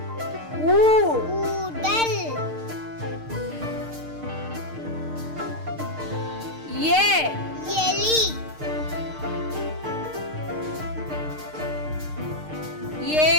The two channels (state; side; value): late; left; 6.6 ms